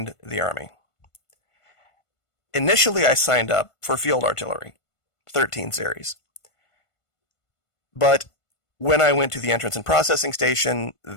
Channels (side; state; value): right; late; 1.5 ms